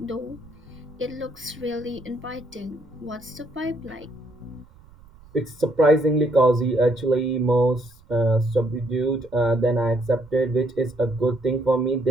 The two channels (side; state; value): right; noise; rumble, 24 dB below the sound